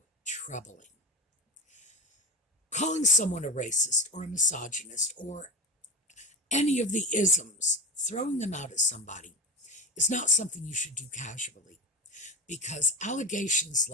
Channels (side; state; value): both; normal; correlation 0.24